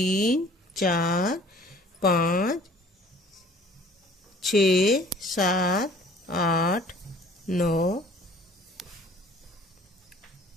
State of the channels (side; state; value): both; normal; correlation 0.52